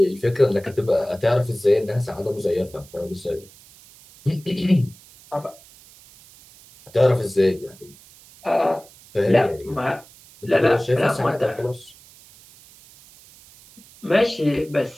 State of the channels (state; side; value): noise; right; hiss, 24 dB below the sound